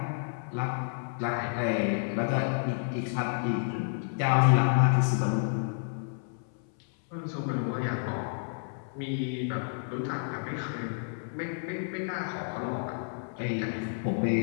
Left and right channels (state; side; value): silent; right; 58 dB below the other